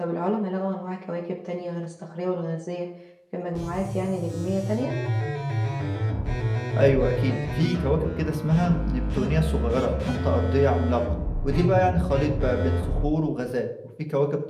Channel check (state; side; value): identical; both; correlation 1.00